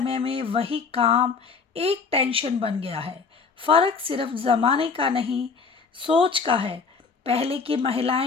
में वही काम एक टेंशन बन गया है। फ़र्क सिर्फ ज़माने का नहीं, सोच का है। पहले की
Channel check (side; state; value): right; quieter; 5.1 dB